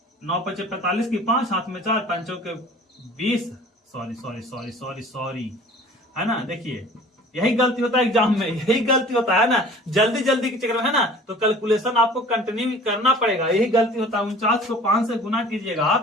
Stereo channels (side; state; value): both; normal; correlation 0.46